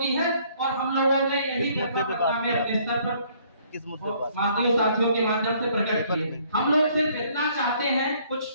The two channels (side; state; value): both; inverted; correlation -0.62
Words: है और हम लोगों ने यही व्यथा में अपने स्तर पर माध्यमिक साथियों के माध्यम से प्रकट किए। हम लोग सिर्फ इतना चाहते हैं,